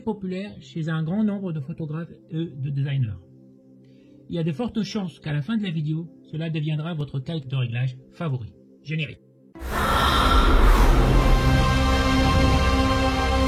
populaire chez un grand nombre de photographes et de designers. Il y a de fortes chances qu'à la fin de la vidéo, cela deviendra votre calque de réglage favori. Générique.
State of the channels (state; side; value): identical; both; correlation 1.00